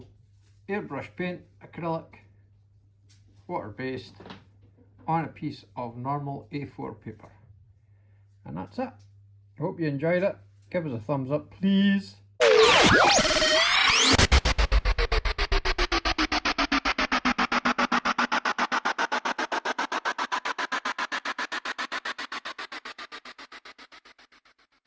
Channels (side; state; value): both; identical; correlation 1.00